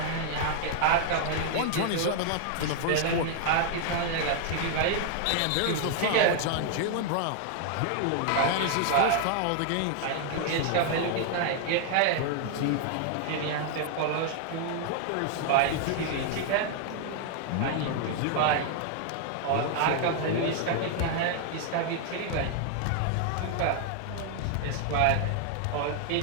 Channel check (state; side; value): different; both; correlation 0.00